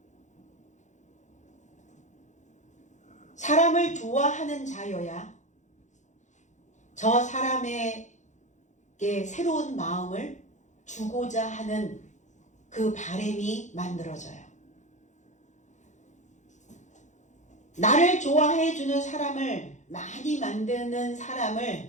사람을 좋아하는 자여야 저 사람에게 새로운 마음을 주고자 하는 그 바람이 만들어져요. 나를 좋아해 주는 사람을 많이 만드는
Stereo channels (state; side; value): late; right; 0.35 ms